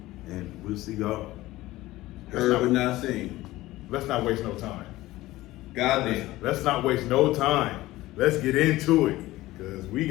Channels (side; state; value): right; quieter; 17.4 dB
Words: And we'll see y'all. Heard but not seen. Let's not waste no time. Goddamn. Let's not waste no time. Let's get into it. Because we